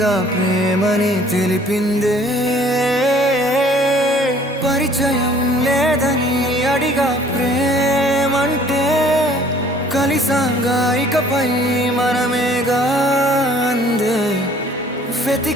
ప్రేమని తెలిపిందే. పరిచయం లేదని అడిగా ప్రేమంటే, కలిసాంగా ఇకపై మనమేగా అందే.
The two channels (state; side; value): normal; both; correlation 0.55